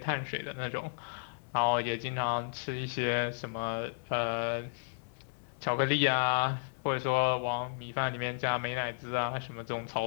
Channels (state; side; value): silent; right; 56 dB below the other